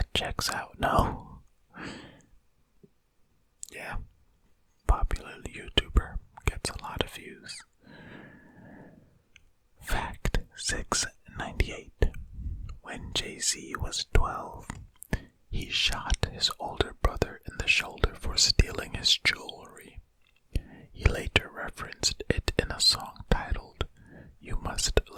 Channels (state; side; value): identical; both; correlation 1.00